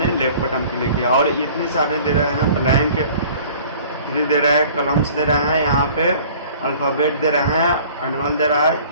लेफ्ट बटन क्लिक किया और इतने सारे दे रहे हैं, ब्लैंक दे रहे हैं, कलम्स दे रहे हैं, यहाँ पे अल्फ़ाबेट दे रहे हैं, एनुअल दे रहा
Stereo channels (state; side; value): inverted; both; correlation -0.49